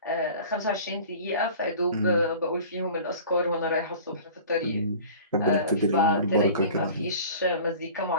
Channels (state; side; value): inverted; both; correlation -0.43